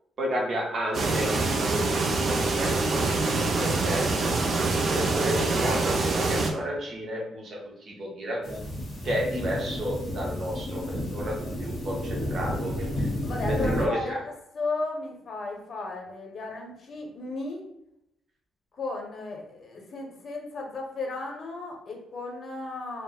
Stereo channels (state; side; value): normal; both; correlation 0.78